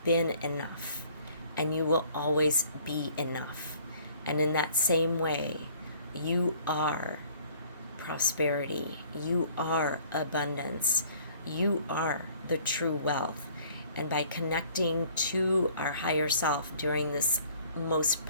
been enough, and you will always be enough. And in that same way, you are prosperity, you are abundance, you are the true wealth. And by connecting to our higher self during this most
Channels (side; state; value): both; inverted; correlation -0.56